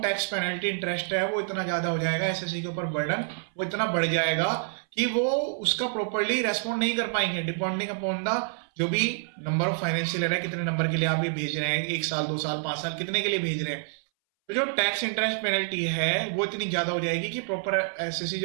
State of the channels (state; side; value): silent; left; 60 dB below the other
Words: tax penalty interest है वो इतना ज्यादा हो जाएगा, एसएससी के ऊपर बर्डन वो इतना बढ़ जाएगा कि वो उसका प्रॉपर्ली रेस्पॉन्ड नहीं कर पाएंगे, डिपेंडिंग अपॉन द जो भी नंबर ऑफ फाइनेंशियल ईयर है, कितने नंबर के लिए आप ये भेज रहे हैं, 1 साल 2 साल 5 साल कितने के लिए भेज रहे हैं, तो जो टैक्स इंटरेस्ट पेनल्टी है वो इतनी ज्यादा हो जाएगी कि प्रॉपर एसएससी